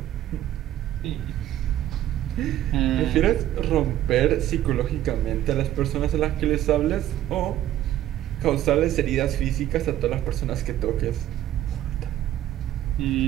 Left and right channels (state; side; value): quieter; left; 12.8 dB